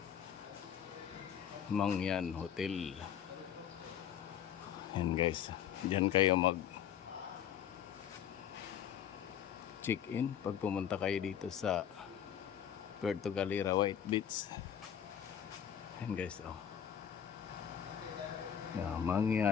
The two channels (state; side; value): quieter; right; 9.1 dB